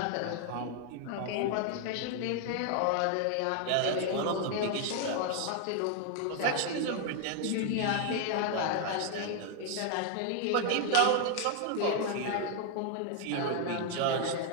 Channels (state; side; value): different; both; correlation 0.00